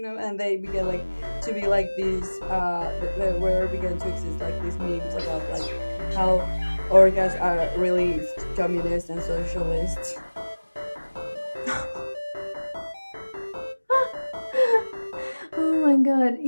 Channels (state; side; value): inverted; both; correlation -1.00